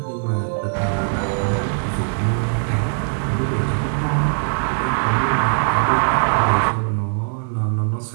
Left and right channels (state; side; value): silent; left; 62 dB below the other